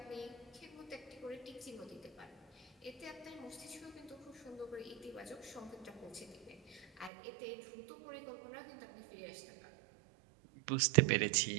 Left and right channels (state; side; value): drops out; left; at 7.1 s